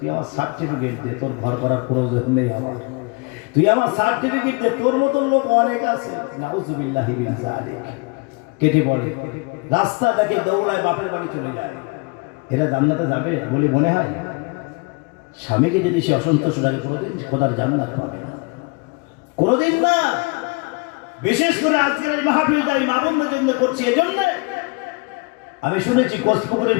আমার সার্টিফিকেট দে, তোর ঘর করার প্রয়োজন নেই আমার, তুই আমার সার্টিফিকেট দে, তোর মতন লোক অনেক আছে। নাউজুবিল্লাহি মিন যালিক। কেটে পড়ে, রাস্তা দেখে দৌড়ায়, বাপের বাড়ি চলে যায়। এরা জান্নাতে যাবে বলে মনে হয়? স্বামীকে যদি সে অসন্তুষ্ট থাকে, কোনোদিন খোদার জান্নাত পাবে না, কোনোদিন না। বিশেষ করে আজকের এই মাহফিলটা আমি মা-বোনদের জন্য করছি। এজন্য আমি শুনেছি কোচপুকুরের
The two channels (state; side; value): quieter; right; 29.4 dB